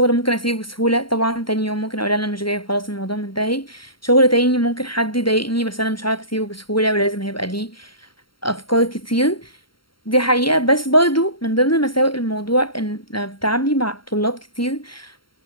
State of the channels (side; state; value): right; late; 0.73 ms